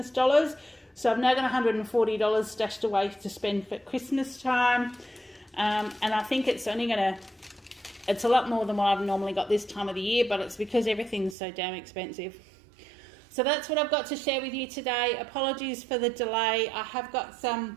dollars. So I've now got $140 stashed away to spend for Christmas time. And I think it's only going to, it's a lot more than what I've normally got this time of the year, but it's because everything's so damn expensive. So that's what I've got to share with you today. Apologies for the delay. I have got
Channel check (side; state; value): left; drops out; at 11.4 s